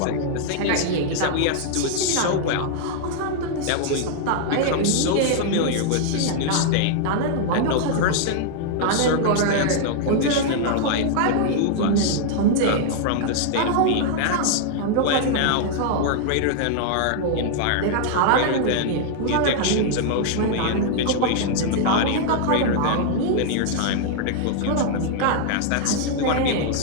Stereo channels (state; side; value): different; both; correlation 0.00